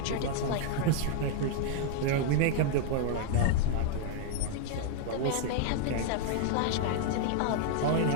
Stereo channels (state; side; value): different; both; correlation 0.00